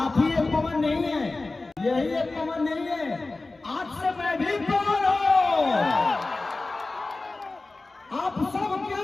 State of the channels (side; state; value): right; quieter; 3.3 dB